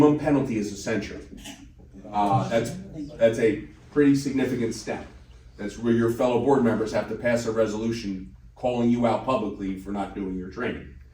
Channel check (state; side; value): identical; both; correlation 1.00